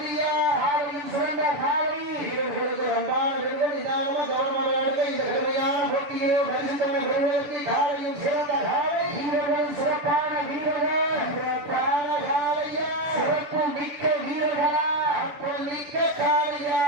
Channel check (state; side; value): late; left; 7.0 ms